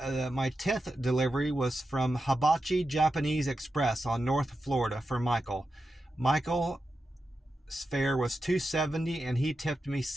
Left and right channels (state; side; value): normal; both; correlation 0.90